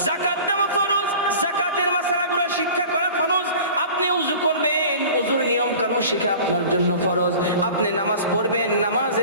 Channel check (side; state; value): both; inverted; correlation -0.41